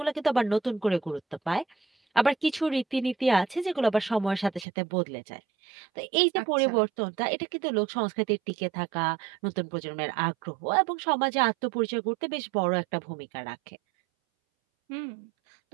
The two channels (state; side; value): drops out; left; at 4.7 s